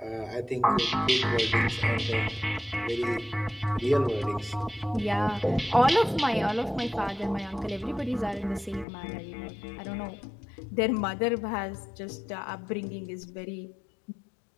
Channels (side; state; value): right; drops out; at 8.8 s